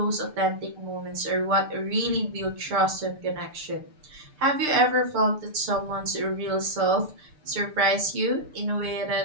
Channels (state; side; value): late; left; 6.7 ms